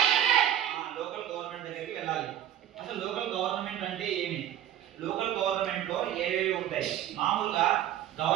లోకల్ గవర్నమెంట్ దగ్గరికి వెళ్ళాలి. అసలు లోకల్ గవర్నమెంట్ అంటే ఏమి? లోకల్ గవర్నమెంట్ లో ఏవేవి ఉంటాయి? మామూలుగా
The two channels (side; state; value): left; quieter; 11.4 dB